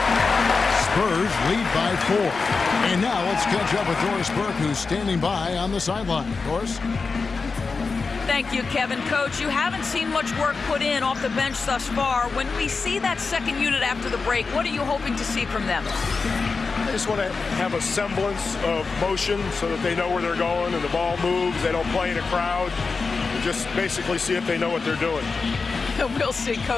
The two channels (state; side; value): quieter; right; 4.5 dB